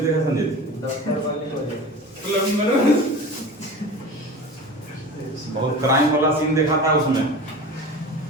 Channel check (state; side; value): normal; both; correlation 0.34